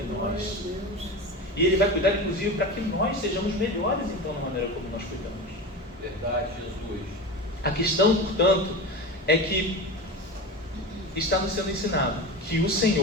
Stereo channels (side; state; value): both; normal; correlation 0.26